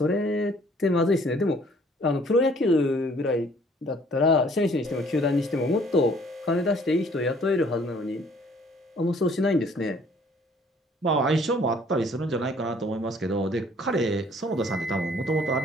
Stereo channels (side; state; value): both; normal; correlation 0.58